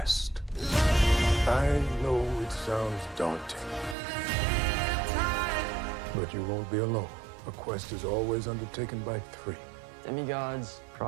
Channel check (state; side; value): drops out; left; at 4.0 s